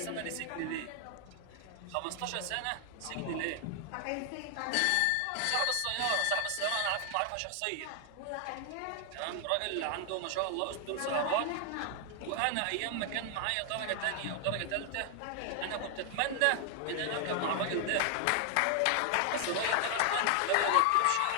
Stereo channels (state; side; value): different; both; correlation 0.00